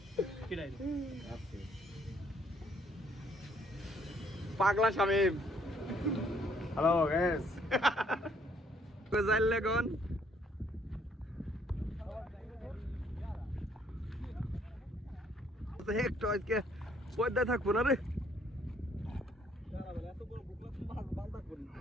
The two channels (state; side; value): normal; both; correlation 0.65